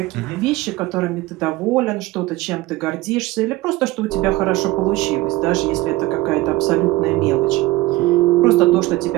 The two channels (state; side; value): quieter; left; 18.6 dB